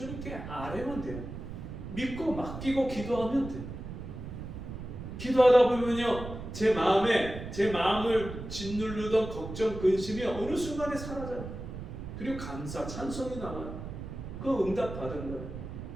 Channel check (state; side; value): noise; right; rumble, 9 dB below the sound